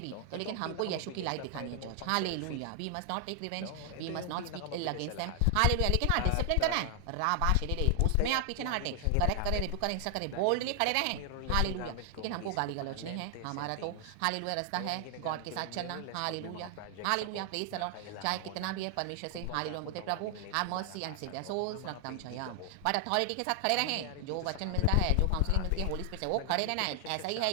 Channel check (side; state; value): both; different; correlation 0.00